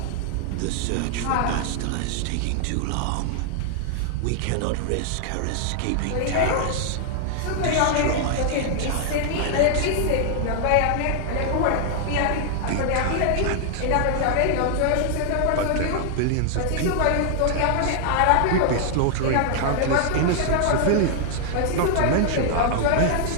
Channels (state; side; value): different; both; correlation 0.00